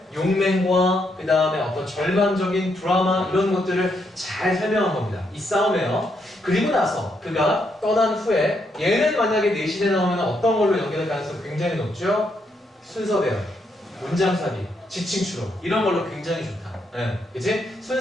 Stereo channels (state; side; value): normal; both; correlation 0.77